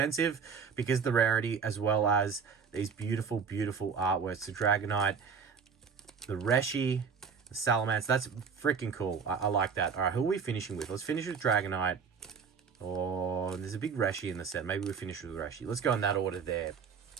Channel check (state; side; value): quieter; left; 6.1 dB